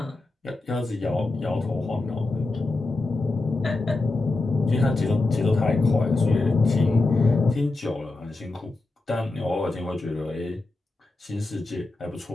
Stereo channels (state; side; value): quieter; right; 3.2 dB